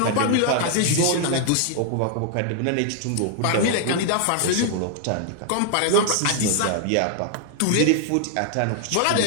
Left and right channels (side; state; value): both; different; correlation 0.00